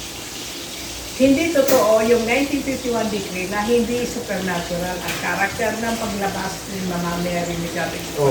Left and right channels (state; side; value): identical; both; correlation 1.00